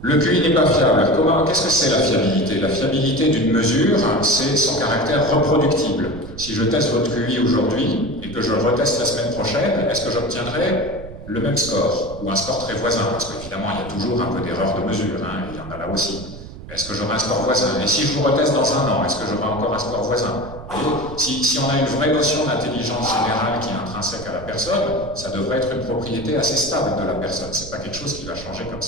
Le QI n'est pas fiable. Qu'est-ce que c'est la fiabilité? La fiabilité d'une mesure, c'est son caractère reproductible. Si je teste votre QI aujourd'hui et que je le reteste la semaine prochaine, est-ce que j'obtiendrai le même score ou un score très voisin? Parce qu'évidemment, il y a toujours un peu d'erreur de mesure, il y en a là aussi. Est-ce que j'aurai un score voisin? Et si je vous reteste dans un an, est-ce que j'aurai encore un score voisin? Si on a une vraie notion d'intelligence générale qui est intrinsèque à la personne, ça devrait être une propriété assez stable de la personne. C'est pas quelque chose qui va changer comme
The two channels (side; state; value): right; noise; rumble, 13 dB below the sound